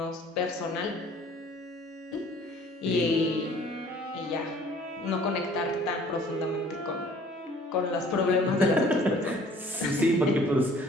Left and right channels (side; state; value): both; normal; correlation 0.53